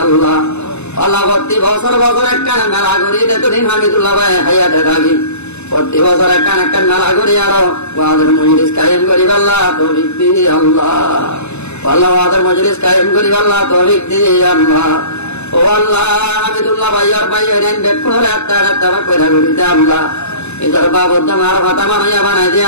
আল্লাহ আল্লাহ প্রতি বছর বছর একটা মেলা করি এতদিন হামিদুল্লাহ ভাই হায়াতে থাকি প্রতি বছর একটা মেলা করি আরো ওয়াদের মজলিস কায়েম করি আল্লাহ তৌফিক দি আল্লাহ আল্লাহ ওয়াদের মজলিস কায়েম করি আল্লাহ তৌফিক দি আল্লাহ ও আল্লাহ হামিদুল্লাহ ভাইয়ার ভাইয়ের বেকুনরে একটা কইরা করি দে আল্লাহ এদের বাবদ মার কথা মানাইয়া বানাই দে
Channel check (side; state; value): right; late; 0.81 ms